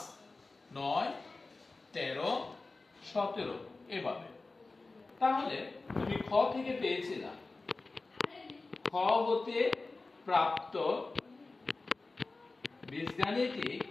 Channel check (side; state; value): right; quieter; 3.5 dB